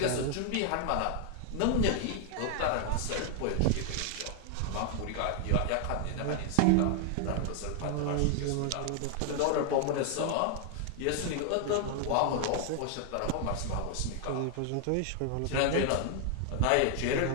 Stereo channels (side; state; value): both; different; correlation 0.00